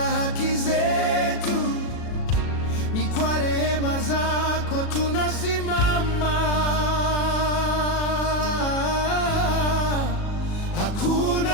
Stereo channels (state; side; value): late; right; 37 ms